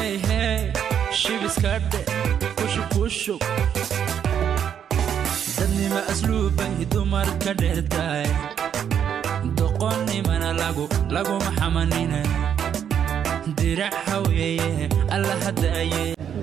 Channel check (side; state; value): left; quieter; 8.7 dB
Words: hey shibiskadhe kushub dadnima asluuban dumar ka dheertaay doqonnimana laguma xamanina dirac haweeye alla hadaaye